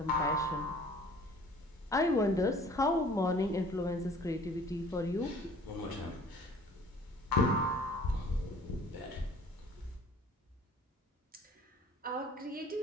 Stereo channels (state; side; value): normal; both; correlation 0.50